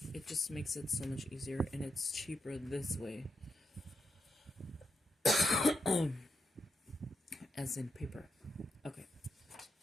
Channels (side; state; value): both; normal; correlation 0.84